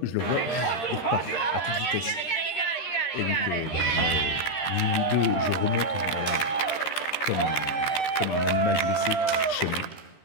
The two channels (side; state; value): right; late; 13 ms